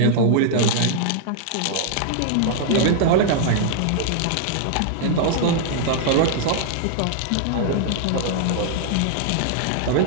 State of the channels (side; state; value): both; different; correlation -0.01